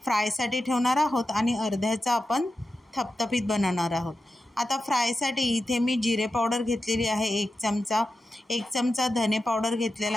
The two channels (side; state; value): both; normal; correlation 0.91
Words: फ्रायसाठी ठेवणार आहोत आणि अर्ध्याचा आपण थपथपीत बनवणार आहोत। आता फ्रायसाठी इथे मी जिरे पावडर घेतलेली आहे 1 चमचा, 1 चमचा धने पावडर